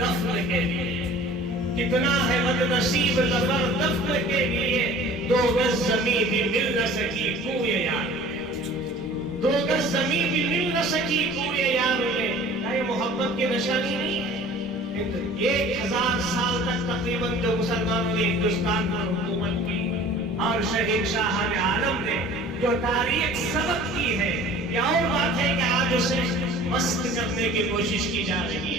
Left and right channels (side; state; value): both; normal; correlation 0.46